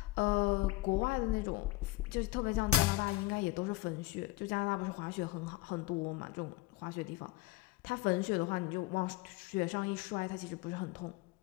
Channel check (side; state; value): right; quieter; 17.2 dB